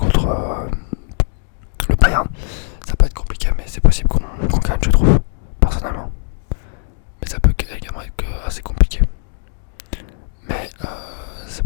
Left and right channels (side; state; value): right; silent; 67 dB below the other